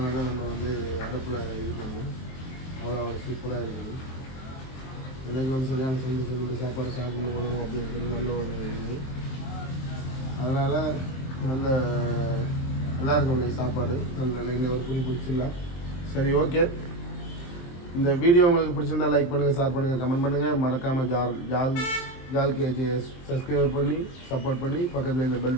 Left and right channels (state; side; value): late; right; 23 ms